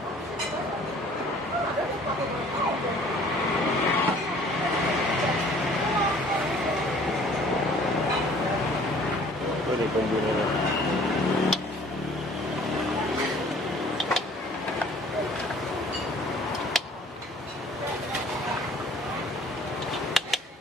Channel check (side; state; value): both; normal; correlation 0.53